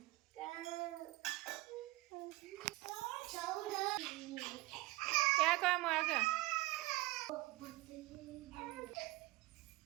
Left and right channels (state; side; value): quieter; left; 19.9 dB